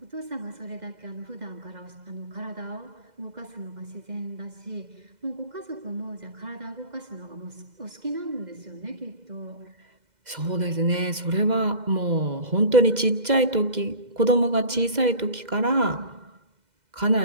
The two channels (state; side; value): late; left; 2.0 ms